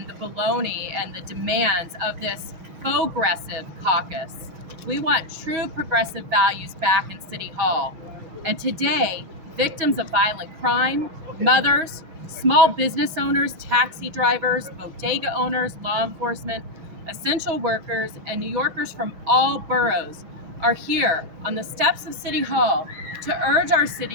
the baloney and the demands of this progressive caucus. We want true progressive values back in City Hall. And today, victims of violent crime, mothers, small business owners, taxi drivers, bodega owners, law enforcement, essential workers, and New Yorkers from all boroughs are here on the steps of City Hall to urge our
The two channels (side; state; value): left; late; 6.3 ms